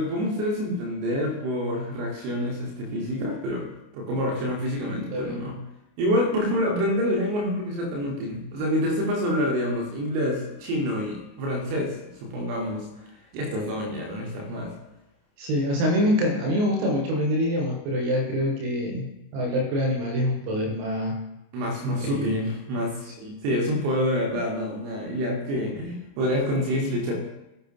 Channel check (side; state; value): left; late; 29 ms